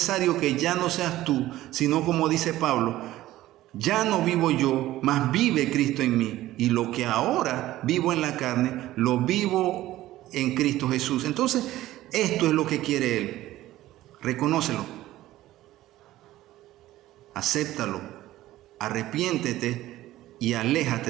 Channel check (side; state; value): left; quieter; 15.4 dB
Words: que ya no seas tú, sino como dice Pablo, ya no vivo yo, mas vive Cristo en mí. Y lo que ahora vivo en la carne, lo vivo en Cristo Jesús. Entonces, esto es lo que quiere Él. Reconócelo, acéptalo, arrepiéntete y